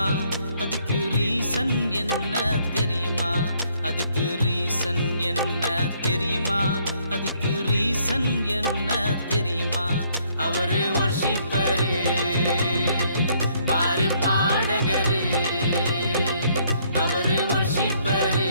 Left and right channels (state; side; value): inverted; both; correlation -0.67